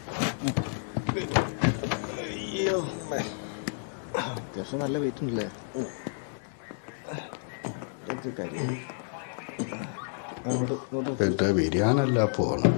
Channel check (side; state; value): right; silent; digital silence